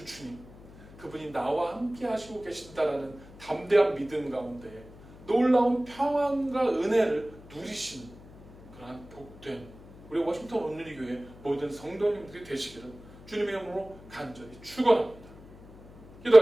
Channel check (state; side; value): noise; left; hum, 20 dB below the sound